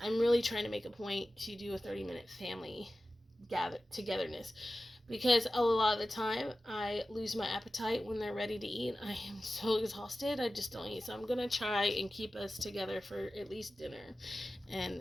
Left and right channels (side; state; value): both; normal; correlation 0.95